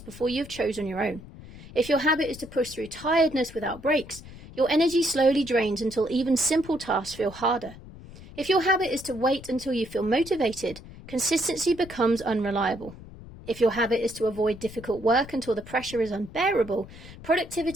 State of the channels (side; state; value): left; noise; rumble, 17 dB below the sound